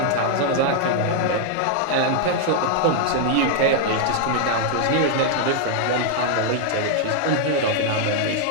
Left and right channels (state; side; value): different; both; correlation 0.00